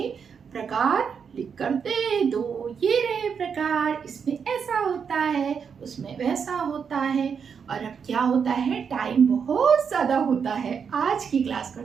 प्रकार लिख कर दे दो। ये रहे प्रकार, इसमें ऐसा होता है, उसमें वैसा होता है। और अब क्या होता है, टाइम बहुत ज्यादा होता है, आज की क्लास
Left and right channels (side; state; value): left; quieter; 6.6 dB